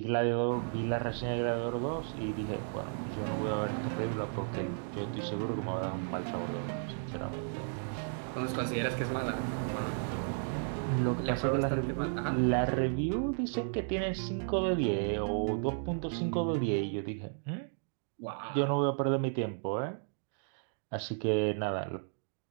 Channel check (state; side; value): silent; left; digital silence